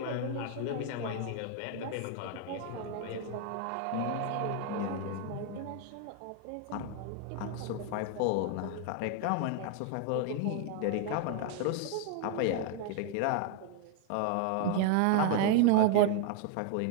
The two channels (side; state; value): both; different; correlation 0.00